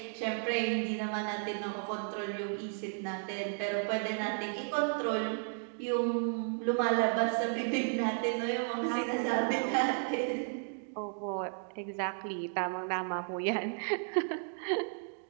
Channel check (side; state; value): left; silent; 55 dB below the other